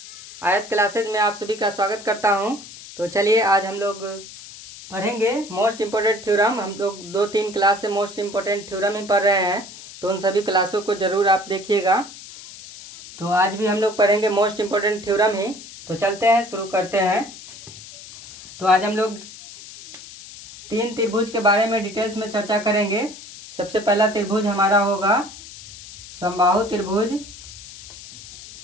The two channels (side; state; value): left; noise; hiss, 16 dB below the sound